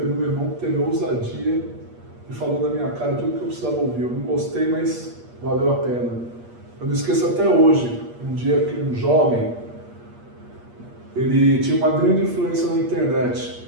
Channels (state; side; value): late; left; 8.5 ms